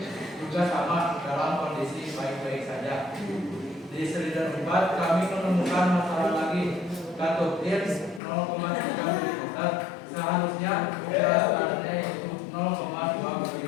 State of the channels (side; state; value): right; drops out; at 8.2 s